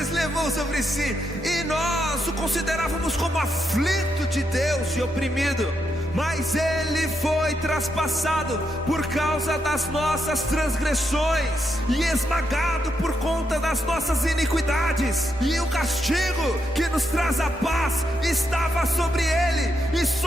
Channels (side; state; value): both; normal; correlation 0.81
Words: levou sobre si, e nós o considerávamos como aflito de Deus e oprimido. Mas ele foi traspassado por causa das nossas transgressões e esmagado por conta das nossas iniquidades. E o castigo que nos traz a paz estava sobre ele, e